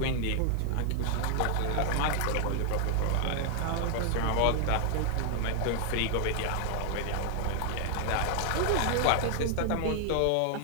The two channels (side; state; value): both; different; correlation 0.00